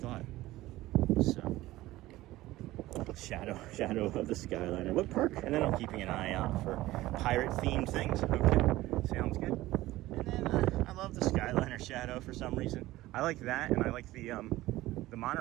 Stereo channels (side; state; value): left; quieter; 17.0 dB